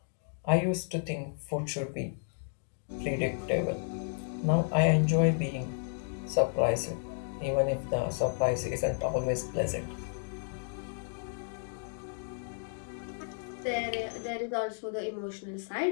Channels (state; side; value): silent; right; digital silence